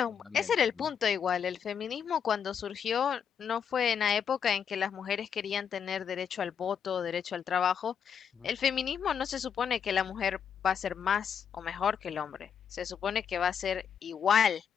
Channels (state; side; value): quieter; right; 7.6 dB